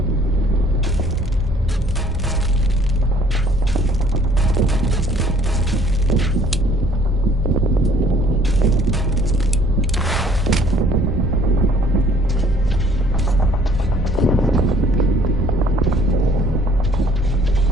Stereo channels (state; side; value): normal; both; correlation 0.58